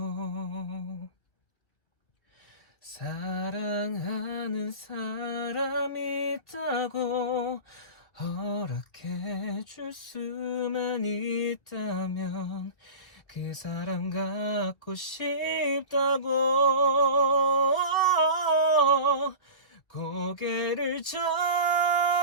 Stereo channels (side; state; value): right; late; 1.5 ms